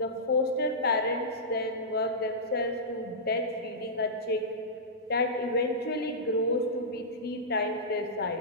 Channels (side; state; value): both; normal; correlation -0.16